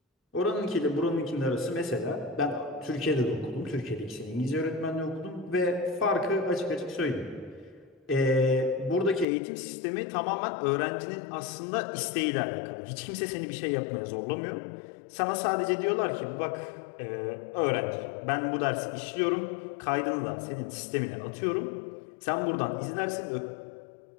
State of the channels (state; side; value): drops out; right; at 9.2 s